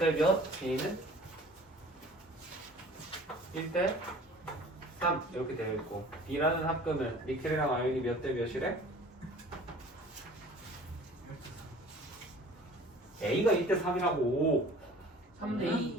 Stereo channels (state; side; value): normal; both; correlation 0.46